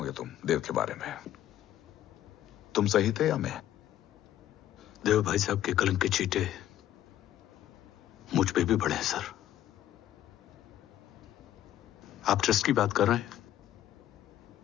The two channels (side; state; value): right; quieter; 12.4 dB